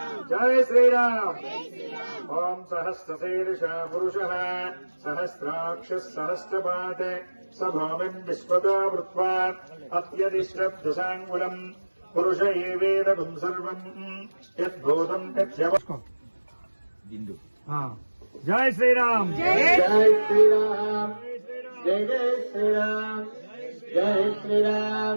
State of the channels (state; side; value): inverted; both; correlation -1.00